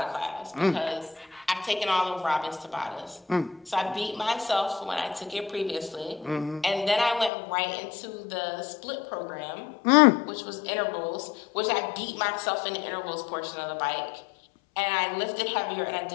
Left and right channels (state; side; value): drops out; right; at 7.3 s